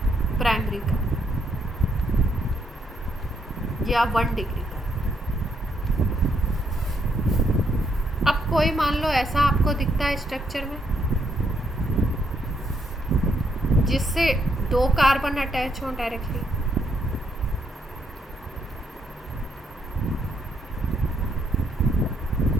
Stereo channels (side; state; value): both; normal; correlation 0.74